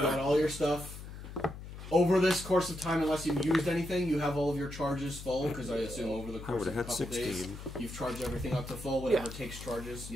got all your stuff. Over this course of time, unless you've used anything, you have all of your charges full, because I assume over the I course would of have a had couple 16. days, you've charged everything up to full, whatever takes charges,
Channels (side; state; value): left; noise; hum, 12 dB below the sound